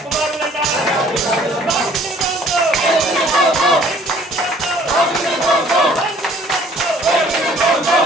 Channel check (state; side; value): normal; both; correlation 0.57